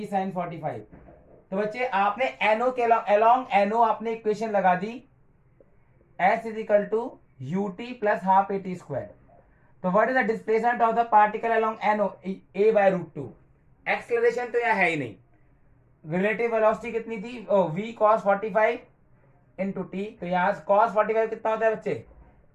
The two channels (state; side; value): identical; both; correlation 1.00